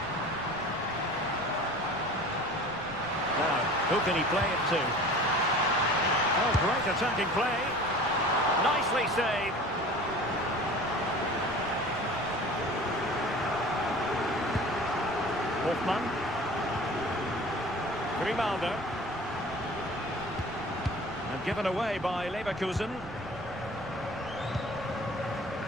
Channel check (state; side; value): noise; right; rumble, 17 dB below the sound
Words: Now, who can he play it to? Oh, great attacking play. Nicely saved. Hoffman. Grimaldo. And given away by Leverkusen.